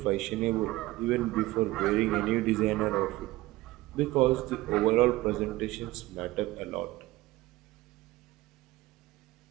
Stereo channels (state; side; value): quieter; left; 18.6 dB